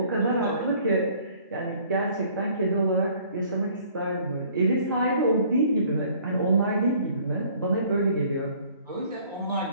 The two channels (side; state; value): both; inverted; correlation -0.56